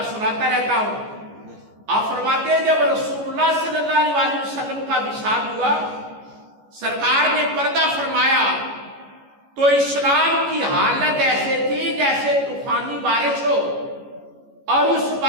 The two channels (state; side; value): late; left; 14 ms